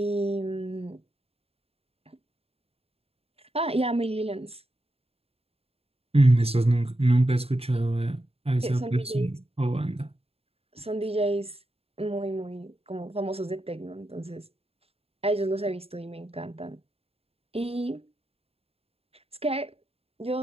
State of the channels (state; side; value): late; left; 0.29 ms